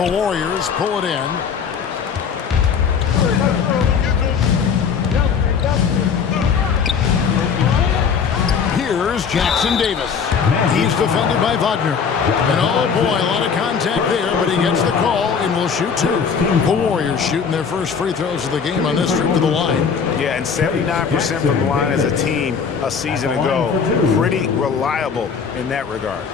Warriors pull it in. Here's Jackson Davis. He's defended by Wagner. And oh boy, a lot of contact there, but he gets the call and will shoot 2. The Warriors shooting their first free throws of the game on this trip to the line. Yeah, and 79% from the line as a team a season ago. Pretty reliable in that regard.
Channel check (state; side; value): quieter; right; 6.3 dB